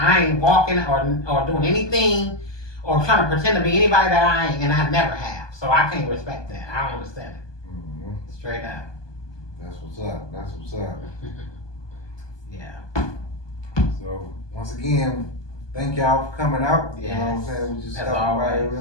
ain't walking or doing anything or trying to pretend to be anybody that I ain't, and I never have. So I can't respect that. I don't understand it. Straight up. That's what's up. Yeah. So once again, thank y'all for coming out. Yes. You know what I'm saying? We just stopped by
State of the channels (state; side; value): late; right; 1.2 ms